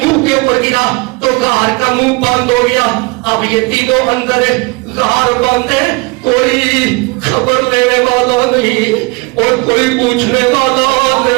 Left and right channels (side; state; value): left; quieter; 26.7 dB